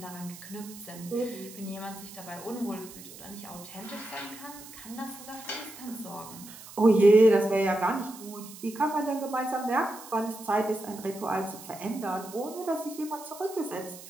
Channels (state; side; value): noise; right; hiss, 16 dB below the sound